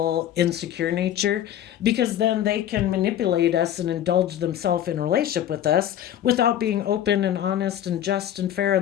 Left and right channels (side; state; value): right; quieter; 11.1 dB